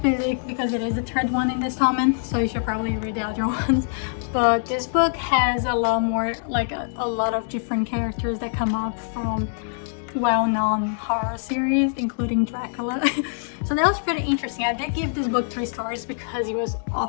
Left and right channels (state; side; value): silent; right; digital silence